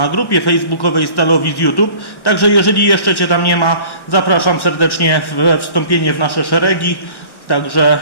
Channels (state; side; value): late; right; 1.1 ms